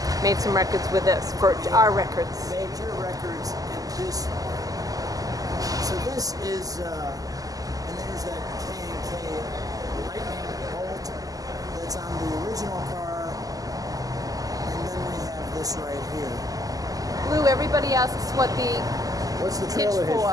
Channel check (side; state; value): left; late; 0.17 ms